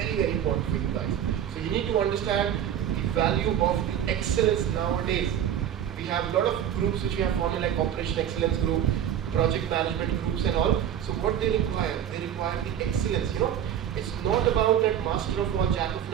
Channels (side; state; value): left; quieter; 9.8 dB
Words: very important for you guys. So you need to understand value of the excellence nowadays. We have a lot of groups which we have formed, like Operation Excellence Group, project management groups and all. So what they require the excellence. It's not about that master of all, jack of